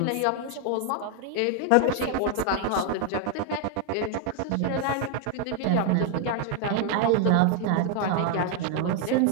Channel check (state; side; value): different; both; correlation 0.00